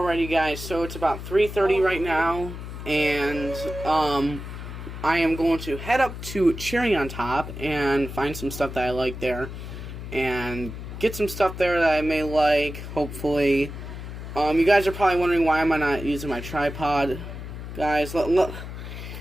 guys, so it's about 3:30 right now, and I am going to head up to Cherry on Top and find some stuff that I like there, and get some stuff there that I may like, hopefully. You guys are probably wondering why am I not using my tripod. Guys, let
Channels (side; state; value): left; noise; hum, 9 dB below the sound